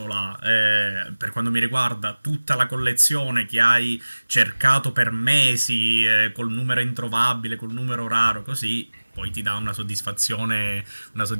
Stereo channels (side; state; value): both; inverted; correlation -1.00